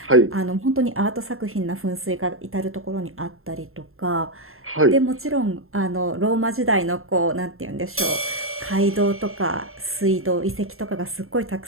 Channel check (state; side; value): late; left; 0.61 ms